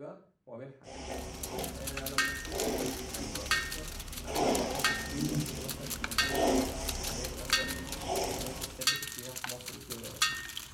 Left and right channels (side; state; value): both; identical; correlation 1.00